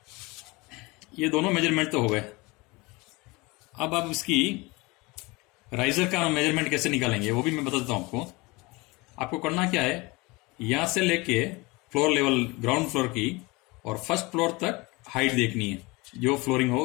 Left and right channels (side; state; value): right; quieter; 24.4 dB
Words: ये दोनों मेजरमेंट तो हो गए। अब आप इसकी राइजर का मेजरमेंट कैसे निकालेंगे वो भी मैं बता देता हूं आपको। आपको करना क्या है, यहां से लेके फ्लोर लेवल, ग्राउंड फ्लोर की और फर्स्ट फ्लोर तक हाइट देखनी है, जो फ्लोरिंग हो